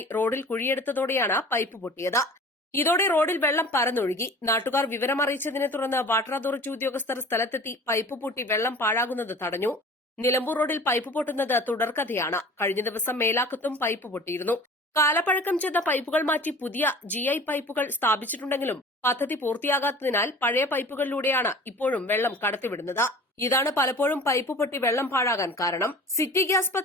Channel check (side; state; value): both; normal; correlation 0.42